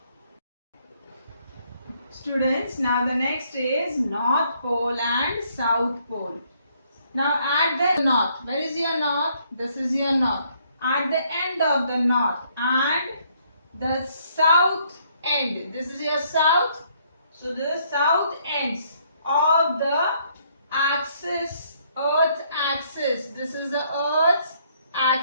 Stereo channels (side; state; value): both; inverted; correlation -0.68